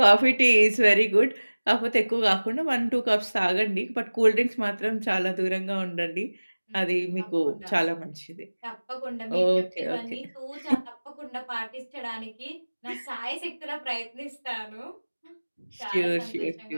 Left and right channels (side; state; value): both; inverted; correlation -1.00